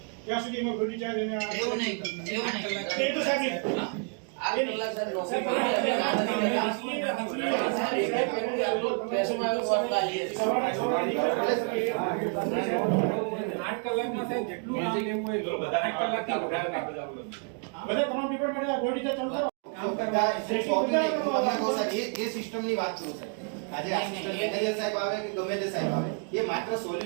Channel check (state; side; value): quieter; left; 39.8 dB